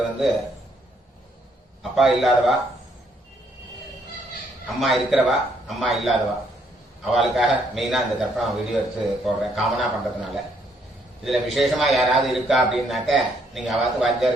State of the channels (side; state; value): both; normal; correlation 0.70